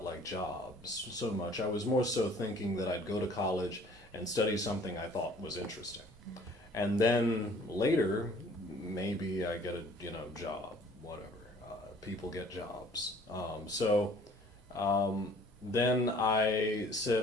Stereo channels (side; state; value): both; normal; correlation 0.54